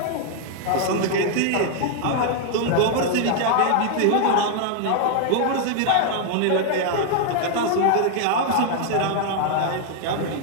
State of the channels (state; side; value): different; both; correlation 0.00